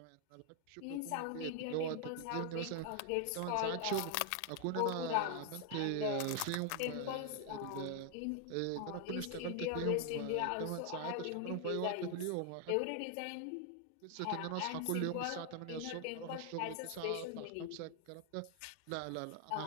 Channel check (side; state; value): both; different; correlation 0.00